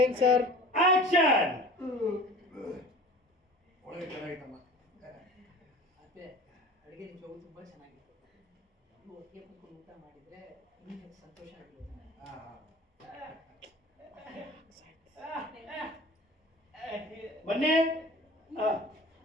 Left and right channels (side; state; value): both; normal; correlation 0.41